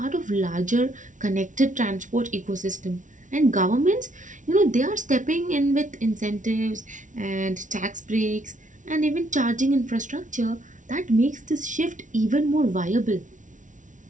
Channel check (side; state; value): left; late; 0.37 ms